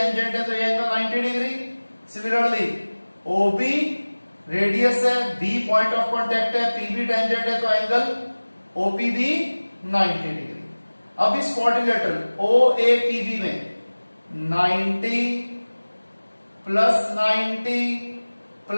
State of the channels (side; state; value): both; inverted; correlation -1.00